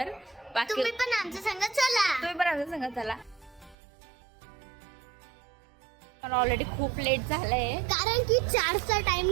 तुम्ही पण आमच्या संग चला. तुम्ही पण आमच्या संग चला. मला ऑलरेडी खूप लेट झालंय कारण की 4चा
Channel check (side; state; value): left; drops out; at 3.8 s